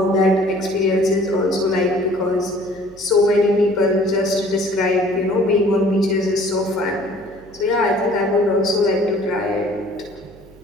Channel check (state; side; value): noise; right; hum, 24 dB below the sound